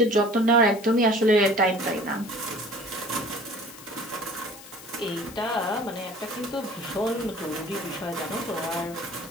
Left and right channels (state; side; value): noise; left; hiss, 17 dB below the sound